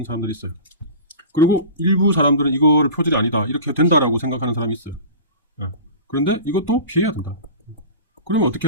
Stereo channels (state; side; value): inverted; both; correlation -0.35